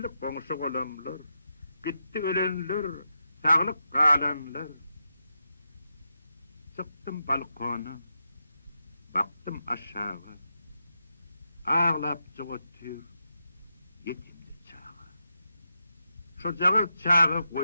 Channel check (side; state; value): both; inverted; correlation -0.87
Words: koňuşy golamlar, gitti ölenler, sağlık kalanlar. Çıktım balkona, baktım aşağı, ağlap çıgıtır, yetimli çağı. Şu jağı çağı